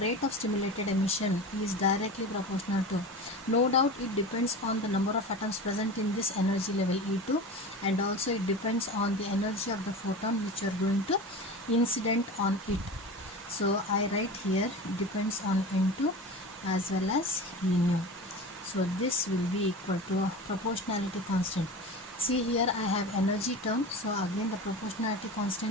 of stimulated emission is directly proportional to, no doubt it depends on the number of atoms present in this energy level E2, and also it depends on the energy of the photon which you are going to incident on it. So I write here depends on N2 as well as E nu. So this will be equal to a proportionality constant. See here I have energy term, so again the proportionality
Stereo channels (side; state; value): both; normal; correlation 0.31